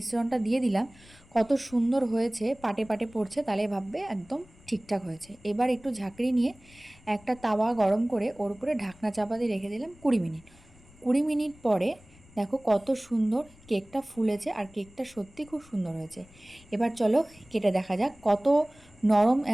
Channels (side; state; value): left; noise; rumble, 25 dB below the sound